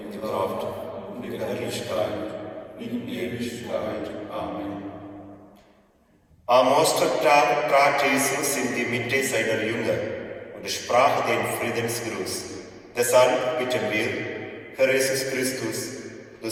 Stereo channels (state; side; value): identical; both; correlation 1.00